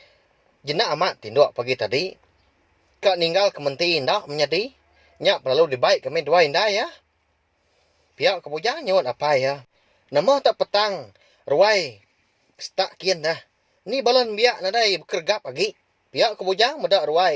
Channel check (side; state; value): both; identical; correlation 1.00